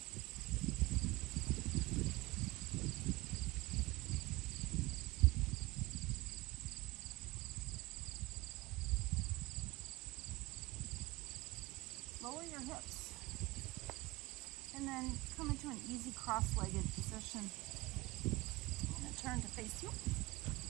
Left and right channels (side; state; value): left; quieter; 21.4 dB